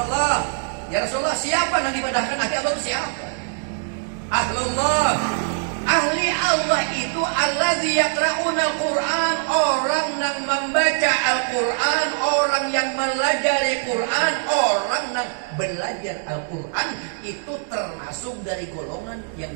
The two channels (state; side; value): silent; left; digital silence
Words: Ya Rasulullah, siapa yang dibadahkan ahli Allah itu siapa? Ahlullah. Ahli Allah itu allazi yaqra'una al-Quran, orang yang membaca Al-Quran, orang yang melajari Quran, orang yang belajar Al-Quran itu termasuk dari golongan yang